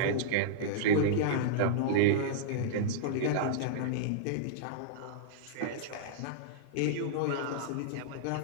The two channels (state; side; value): different; both; correlation -0.02